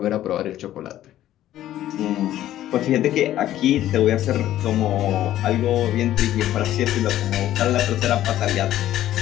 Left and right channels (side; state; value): right; quieter; 13.0 dB